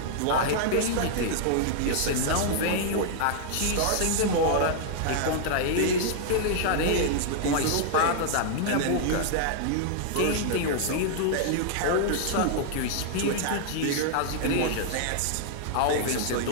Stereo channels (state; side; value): different; both; correlation -0.01